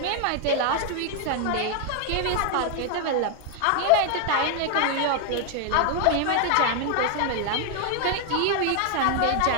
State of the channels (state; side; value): different; both; correlation 0.00